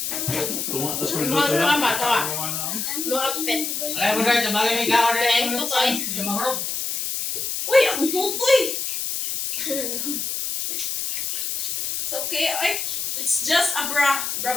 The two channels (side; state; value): left; noise; hiss, 2 dB below the sound